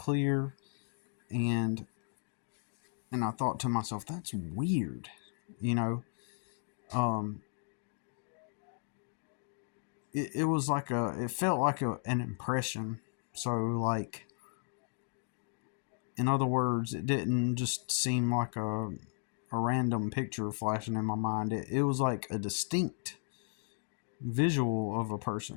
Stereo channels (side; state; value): right; silent; 54 dB below the other